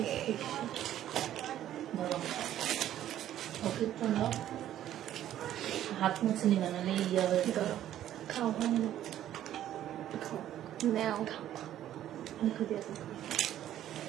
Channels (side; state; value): left; quieter; 12.0 dB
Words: হাত মুছে নিবে না ইয়া হয়ে যাবে। খাও